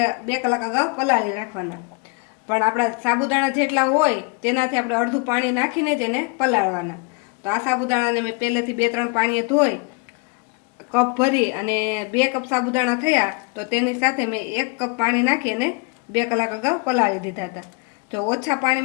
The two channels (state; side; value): quieter; right; 31.7 dB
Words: 2 કલાક અગાઉ પલાળી રાખવાના, પણ આપણા સાબુદાણા જેટલા હોય તેનાથી આપણે અડધું પાણી નાખીને જ એને પલાળવાના। તો આ સાબુદાણાને મેં પહેલેથી 2-3 પાણીએ ધોઈ કપ ભરી અને 2 કપ સાબુદાણા થયા તો તેની સાથે મેં 1 કપ પાણી નાખી અને 2 કલાક અગાઉ પલાળી દીધા હતા। જો ઓછા